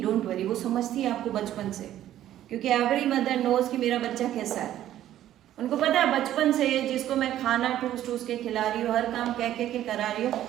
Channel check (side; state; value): left; quieter; 12.4 dB